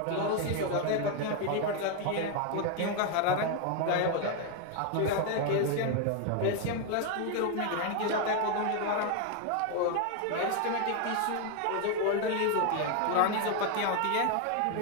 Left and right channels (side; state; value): both; different; correlation 0.01